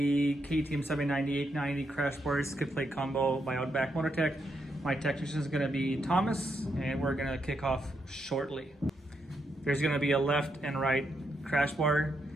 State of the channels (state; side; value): normal; both; correlation 0.80